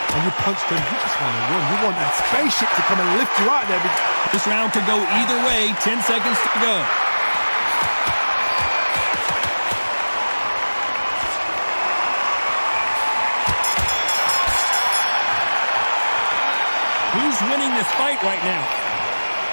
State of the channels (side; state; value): both; inverted; correlation -1.00